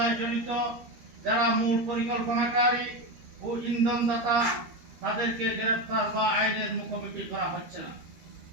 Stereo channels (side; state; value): left; late; 13 ms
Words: জড়িত, যারা মূল পরিকল্পনাকারী ও ইন্ধনদাতা, তাদেরকে গ্রেফতার বা আইনের মুখোমুখি করা হচ্ছে না।